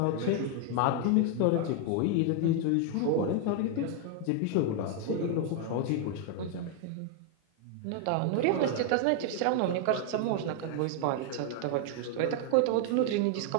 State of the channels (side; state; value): both; different; correlation 0.00